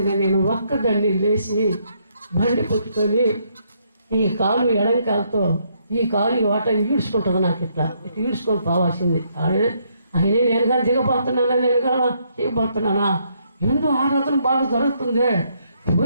నేను ఒక్కదాన్ని లేచి బండి పెట్టుకొని ఈ కాలు ఎడంకాలతో ఈ కాలు వాట ఈడ్చుకుంటుంది. నాకు ఇట్లా ఈడ్చుకొని పోవాల్సింది. ఆయనే నేను కానీ దిగబోతున్నానా, నేను కానీ చేయబోతున్నానా, ఎందుకు ఆరాధన బాగా జరుగుతుంది,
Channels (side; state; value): both; inverted; correlation -0.73